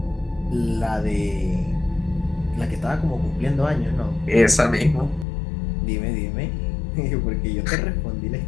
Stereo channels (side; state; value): right; drops out; at 5.2 s